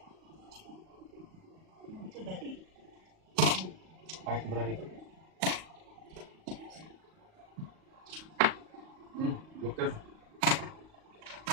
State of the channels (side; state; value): left; late; 38 ms